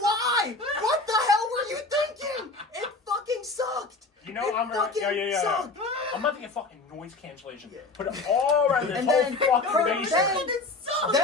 What the hell were you thinking? It fucking sucked. You know, it I'm fucking yeah. sucked. I'm about to get fucking noise cancellation. Put it all around this And whole then, fucking basement.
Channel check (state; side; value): quieter; right; 3.5 dB